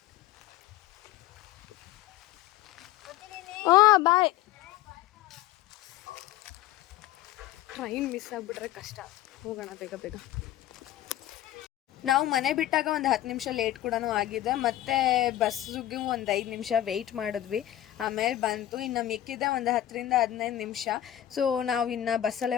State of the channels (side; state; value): right; quieter; 13.4 dB